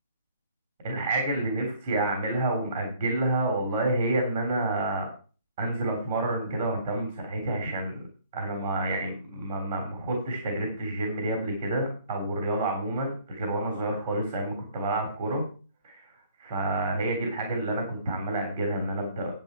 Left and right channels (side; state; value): both; inverted; correlation -0.58